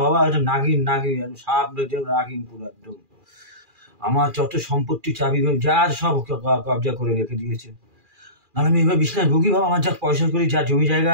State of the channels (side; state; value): left; late; 2.4 ms